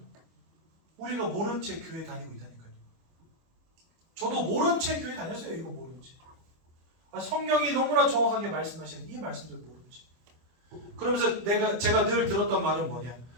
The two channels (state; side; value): late; left; 25 ms